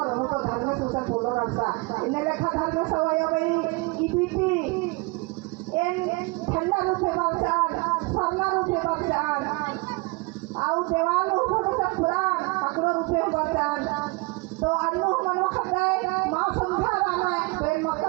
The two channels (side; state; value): left; quieter; 26.6 dB